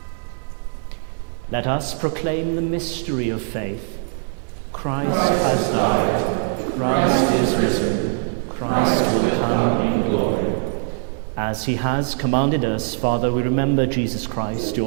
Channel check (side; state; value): left; silent; 58 dB below the other